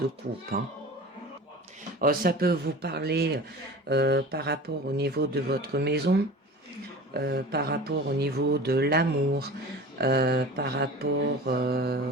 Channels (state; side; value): normal; both; correlation 0.37